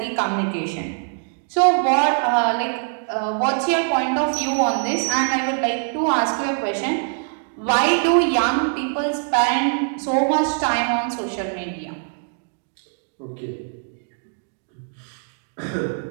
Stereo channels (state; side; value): silent; left; 58 dB below the other